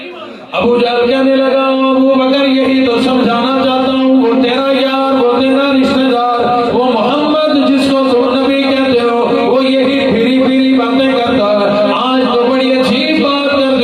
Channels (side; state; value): both; identical; correlation 1.00